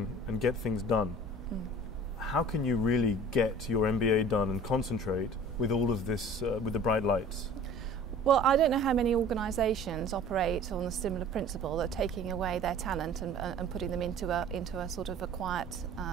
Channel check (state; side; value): normal; both; correlation 0.46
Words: get things done. How can you really get your MBA done and concentrate with all of this, with the bright lights? Well, I don't know how many organisations operate on a similar principle, that taking away their talent and putting them into a sort of a quiet